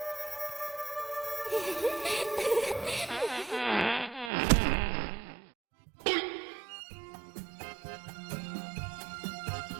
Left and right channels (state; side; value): drops out; left; at 4.3 s